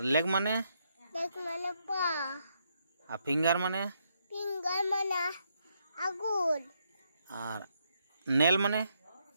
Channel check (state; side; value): inverted; both; correlation -0.77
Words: लेग माने लेग माने पाँव, फिंगर माने फिंगर माने आंगुर, और नेल माने